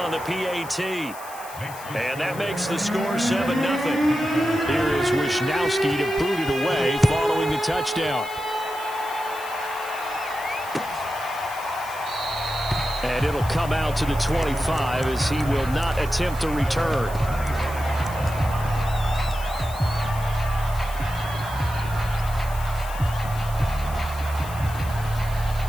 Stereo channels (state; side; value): noise; left; hiss, 16 dB below the sound